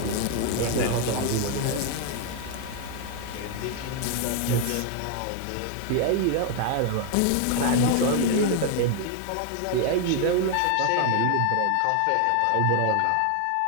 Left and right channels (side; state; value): both; different; correlation 0.01